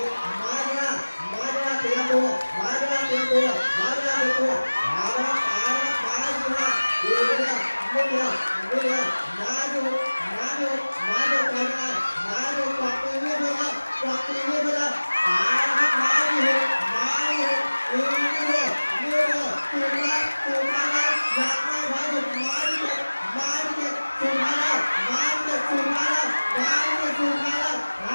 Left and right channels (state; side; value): inverted; both; correlation -1.00